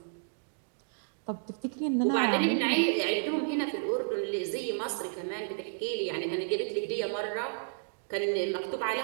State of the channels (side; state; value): left; silent; digital silence